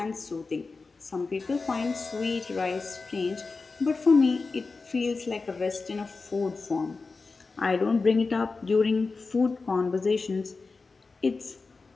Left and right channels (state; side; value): quieter; right; 4.1 dB